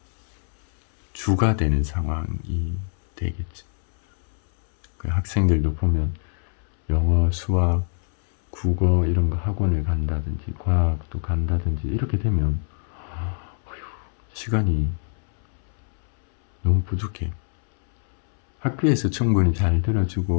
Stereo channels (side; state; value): right; silent; 63 dB below the other